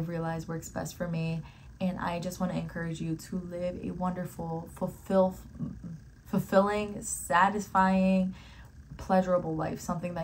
realized works best for me. And I just want to encourage you to live a wonderful, fulfilling, satisfying, pleasurable life. Something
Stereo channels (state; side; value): identical; both; correlation 1.00